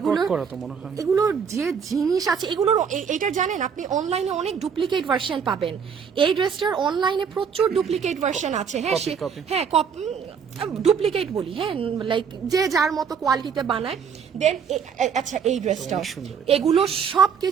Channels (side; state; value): left; quieter; 6.8 dB